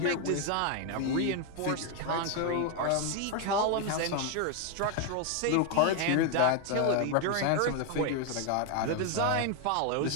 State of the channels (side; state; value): both; different; correlation 0.01